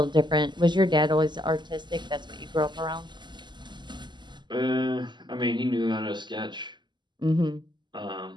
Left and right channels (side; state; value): left; late; 0.21 ms